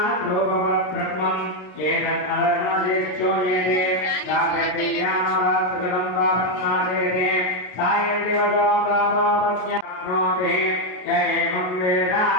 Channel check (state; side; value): late; right; 32 ms